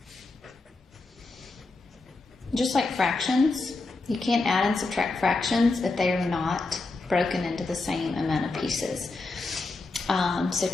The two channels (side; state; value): right; quieter; 3.5 dB